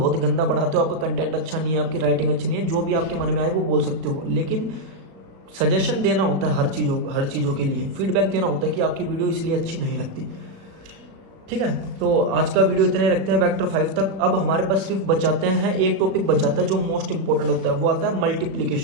गंदा पढ़ाते हो, आपका कंटेंट अच्छा नहीं है, आपकी राइटिंग अच्छी नहीं है, जो भी आपके मन में आए वो बोल सकते हो। लेकिन सजेशन देना होता है हर चीज़ों के लिए, फीडबैक देना होता है कि आपकी वीडियो इसलिए अच्छी नहीं लगती। ठीक है, तो आज का वीडियो इतने रखते हैं वेक्टर 5 तक। अब हमारे पास सिर्फ बचाते हैं एक टॉपिक बचाता है जो मोस्ट इंपोर्टेंट होता है, वो आता है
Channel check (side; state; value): left; late; 36 ms